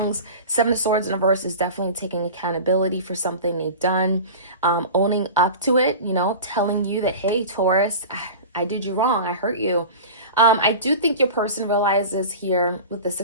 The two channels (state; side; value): inverted; both; correlation -0.33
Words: Seven of Swords in reverse is definitely taking accountability for something they've done, owning up to it, telling you that, hey, Taurus, I did you wrong. I hurt you. I do think your person realizes here with the